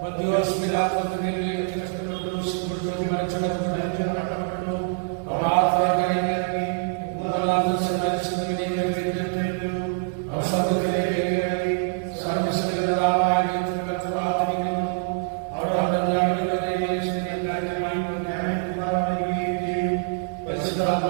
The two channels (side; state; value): left; silent; digital silence